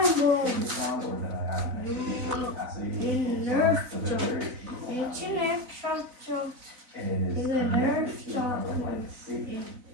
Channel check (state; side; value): late; left; 4.0 ms